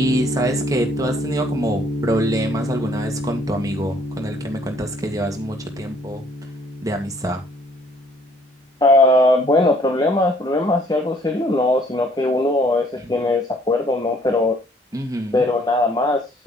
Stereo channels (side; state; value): both; normal; correlation 0.61